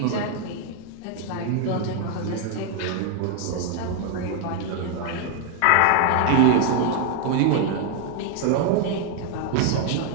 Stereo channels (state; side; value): different; both; correlation 0.00